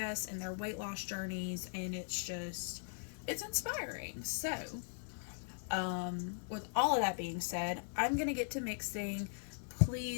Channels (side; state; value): right; silent; digital silence